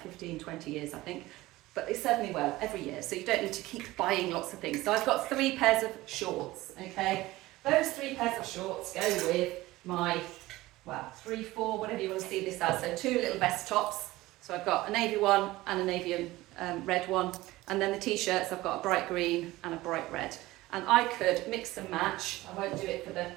15, 20 years, I think. But they serve me well every year, so you don't need to keep buying lots of things. So I've got 3 pairs of shorts, okay? Those 3 pairs of shorts go with my, 3, 4, whatever you want to see this as. So 2 little vest tops. So I've got a navy one and a navy and red one. And then the t-shirts, I've got a bright green and a bright red. And I could mix and match. I won't do it for the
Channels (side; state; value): left; quieter; 18.3 dB